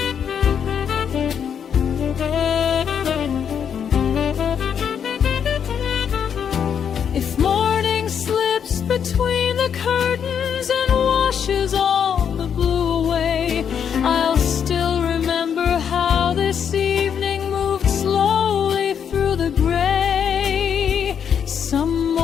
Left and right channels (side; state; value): right; quieter; 7.9 dB